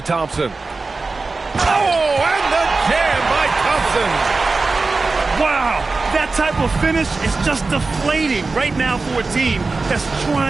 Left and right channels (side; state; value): left; quieter; 3.8 dB